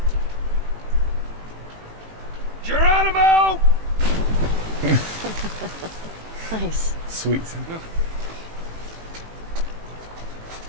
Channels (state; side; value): late; left; 18 ms